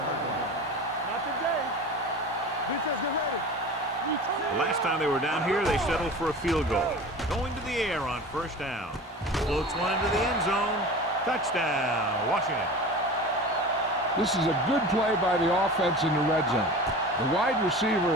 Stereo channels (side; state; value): both; normal; correlation 0.35